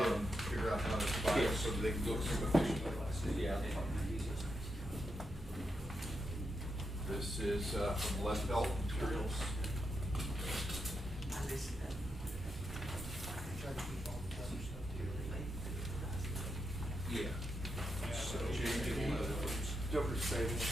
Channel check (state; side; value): normal; both; correlation 0.84